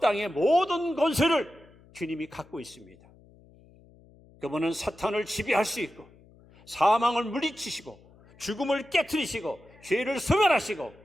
땅의 모든 권세를 주님이 갖고 있습니다. 그분은 사탄을 지배할 수 있고 사망을 물리치시고 죽음을 깨트리시고 죄를 소멸하시고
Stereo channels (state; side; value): noise; left; hum, 26 dB below the sound